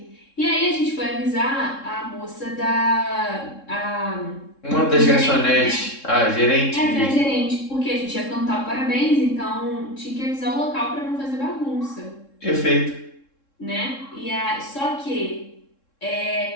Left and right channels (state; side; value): late; right; 3.7 ms